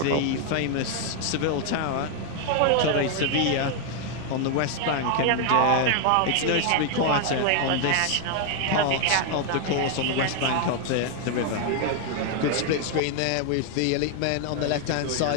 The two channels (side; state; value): both; different; correlation 0.00